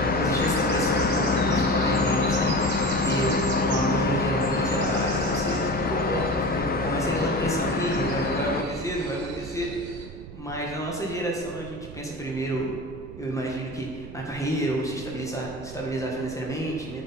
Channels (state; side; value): noise; right; rumble, 15 dB below the sound